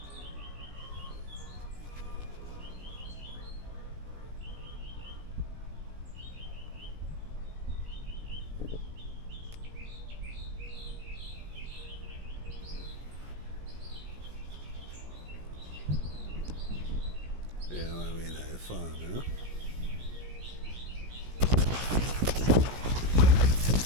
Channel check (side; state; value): left; late; 17 ms